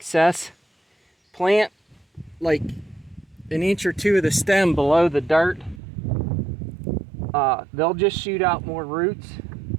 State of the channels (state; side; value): drops out; left; at 5.8 s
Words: Plant like an inch or two of the stem below the dirt. They'll just shoot out more roots,